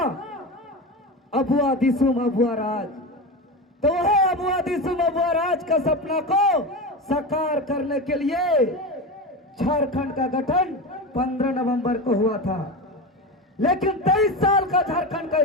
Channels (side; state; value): both; normal; correlation 0.22